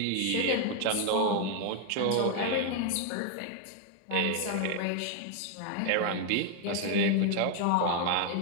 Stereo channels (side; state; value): both; different; correlation 0.01